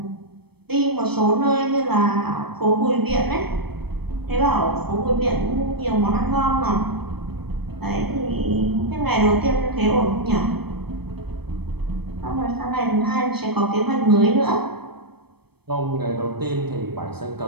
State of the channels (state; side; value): late; left; 0.97 ms